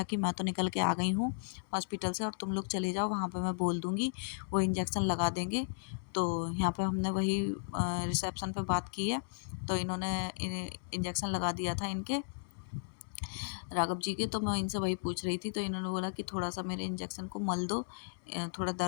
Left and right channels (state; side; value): silent; right; digital silence